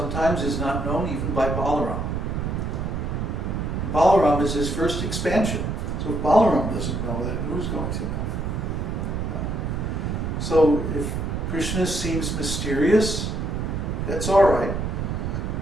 is not known even by Balaram. Balaram is his first expansion. So if Balaram doesn't know, then who's going to know? So if Krishna seems mysterious. That's all right.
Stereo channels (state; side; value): noise; right; rumble, 2 dB below the sound